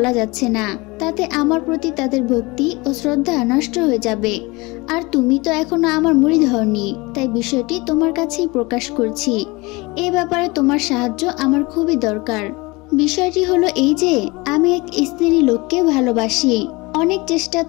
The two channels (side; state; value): right; quieter; 24.2 dB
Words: যাচ্ছে না। তাতে আমার প্রতি তাদের ভক্তি ও শ্রদ্ধা নষ্ট হয়ে যাবে। আর তুমি তো এখনো আমার মুরিদ হওনি, তাই বিষয়টি তোমার কাছেই প্রকাশ করছি। এ ব্যাপারে তোমার সাহায্য আমার খুবই দরকার। বিষয়টি হলো এই যে, আমি এক স্ত্রী লোককে ভালোবাসি। অনেক চেষ্টা